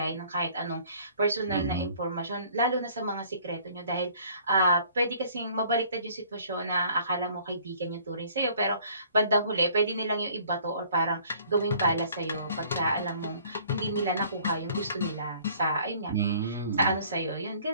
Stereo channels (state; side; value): inverted; both; correlation -0.56